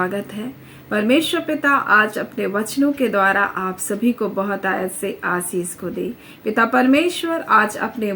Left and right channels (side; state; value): both; identical; correlation 1.00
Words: है। परमेश्वर पिता आज अपने वचनों के द्वारा आप सभी को बहुत आयत से आशीष को दे। पिता परमेश्वर आज अपने